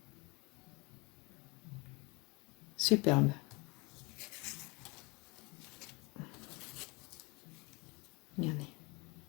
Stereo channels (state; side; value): quieter; right; 27.5 dB